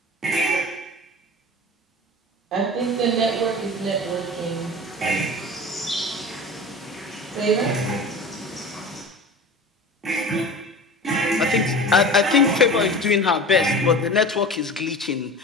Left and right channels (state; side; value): normal; both; correlation 0.35